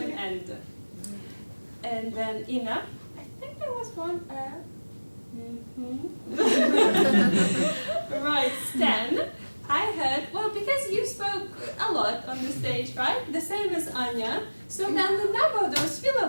and then Ina, I think there was 1 Right, Stan, I heard, well, because you spoke a lot on the stage, right? The same as Anya. So then the number of those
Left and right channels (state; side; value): inverted; both; correlation -1.00